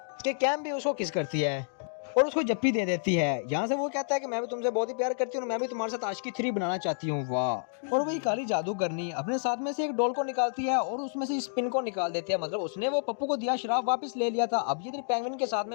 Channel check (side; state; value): right; silent; digital silence